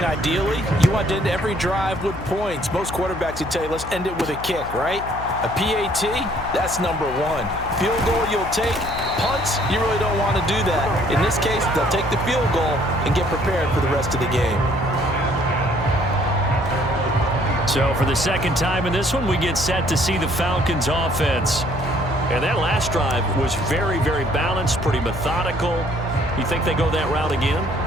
ideally, you want to end every drive with points. Most quarterbacks would tell you, let's end it with a kick, right? A PAT, that's number 1. Field goal you'll take. Punts, you really don't want to do that. In this case, they'll take the field goal and get prepared for the rest of the game. So for the second time in this one, we get set to see the Falcons offense. And that last drive was very, very balanced, pretty methodical. You think they go that route again?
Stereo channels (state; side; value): noise; left; hum, 11 dB below the sound